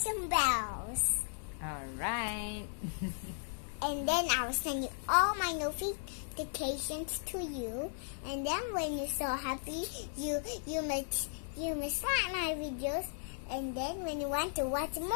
bells. Alright. And then I will send you all my notifications to you. And then when you're so happy, you must like my videos. And then when you want to watch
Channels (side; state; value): right; silent; 54 dB below the other